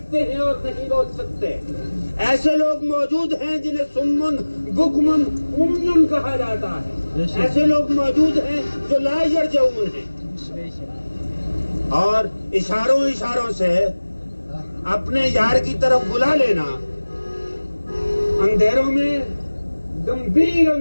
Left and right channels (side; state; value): both; inverted; correlation -1.00